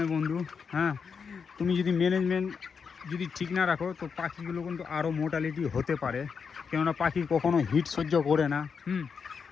বন্ধু, হ্যাঁ তুমি যদি ম্যানেজমেন্ট যদি ঠিক না রাখো তো পাখিগুলো কিন্তু আরও মোর্টালিটি হতে পারে, কেননা পাখি কখনো হিট সহ্য করে না।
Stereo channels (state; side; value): quieter; right; 6.0 dB